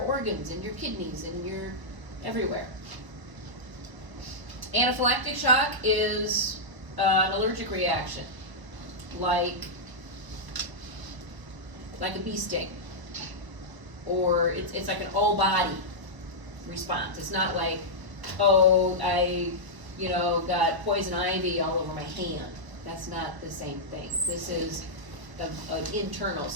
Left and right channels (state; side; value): late; left; 1.0 ms